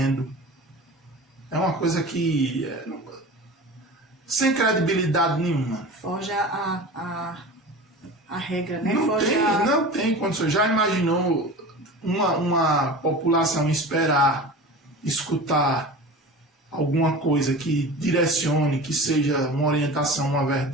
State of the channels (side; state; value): both; normal; correlation 0.34